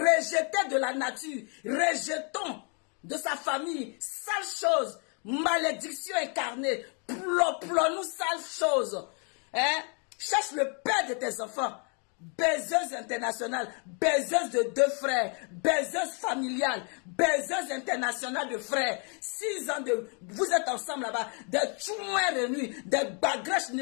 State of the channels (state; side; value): quieter; right; 38.1 dB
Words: de la nature, rejetons de sa famille, sale chose. Malédiction incarnée, nous sale chose. Hein? Cherche le père de tes enfants. Baiseuse internationale, baiseuse de 2 frères, baiseuse familiale, baiseuse internationale de frères. 6 ans de... Vous êtes ensemble là-bas, des tchouins réunis, des bagrèches